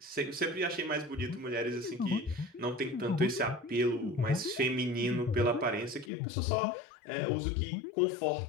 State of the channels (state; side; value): drops out; right; at 6.1 s